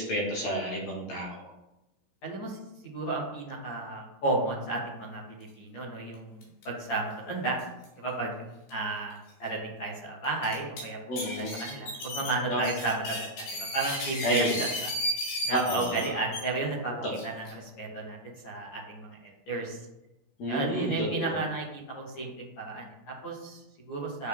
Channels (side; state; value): right; late; 15 ms